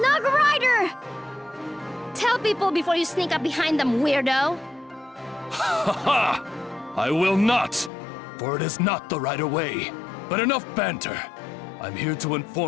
Rider! Tell people before you sneak up behind them, weirdo! Ha ha! I will not! For it is not the right way. But enough banter. I'm here to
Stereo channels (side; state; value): right; drops out; at 7.9 s